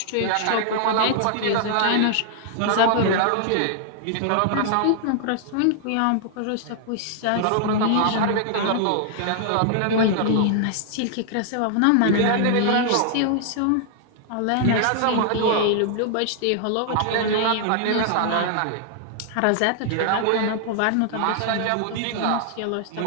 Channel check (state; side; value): different; both; correlation 0.00